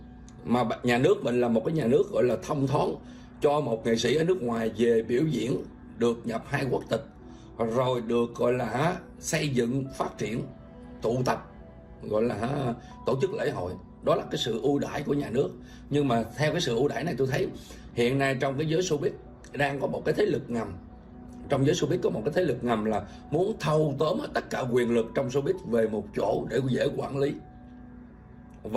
Mà nhà nước mình là một cái nhà nước gọi là thông thoáng, cho một nghệ sĩ ở nước ngoài về biểu diễn được nhập 2 quốc tịch, rồi được gọi là xây dựng, phát triển, tụ tập, gọi là tổ chức lễ hội. Đó là cái sự ưu đãi của nhà nước. Nhưng mà theo cái sự ưu đãi này, tôi thấy hiện nay trong cái giới showbiz đang có một cái thế lực ngầm. Trong giới showbiz có một cái thế lực ngầm là muốn thâu tóm tất cả quyền lực trong showbiz về một chỗ để dễ quản lý.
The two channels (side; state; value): both; identical; correlation 1.00